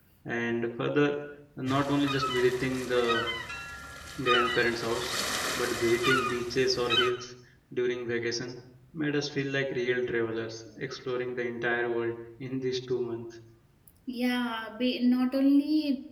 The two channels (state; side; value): identical; both; correlation 1.00